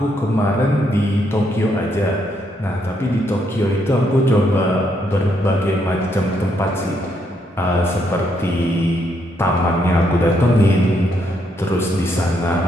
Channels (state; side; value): normal; both; correlation 0.75